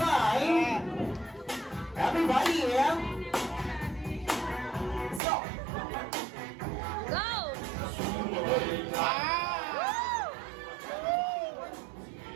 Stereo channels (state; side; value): drops out; left; at 5.2 s